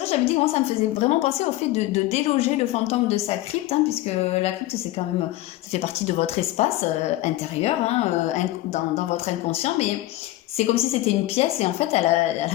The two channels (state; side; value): quieter; right; 16.5 dB